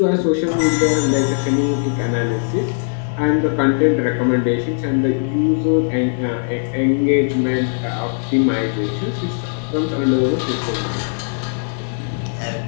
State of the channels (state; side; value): silent; right; 66 dB below the other